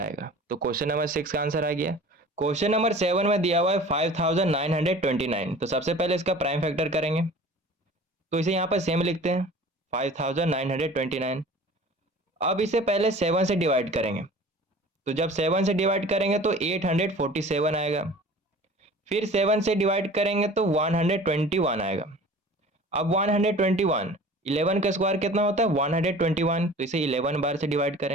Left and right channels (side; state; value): both; normal; correlation 0.44